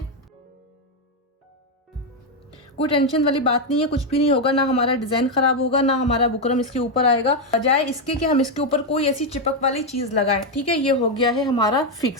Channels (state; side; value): normal; both; correlation 0.04